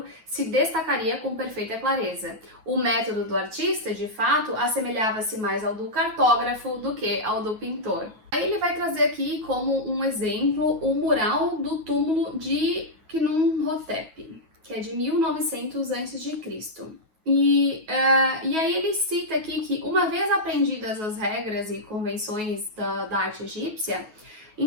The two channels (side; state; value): left; late; 9.3 ms